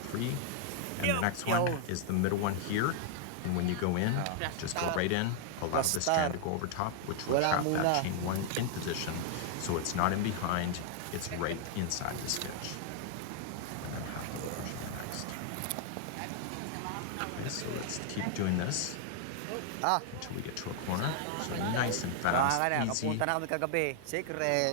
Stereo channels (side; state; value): both; different; correlation 0.00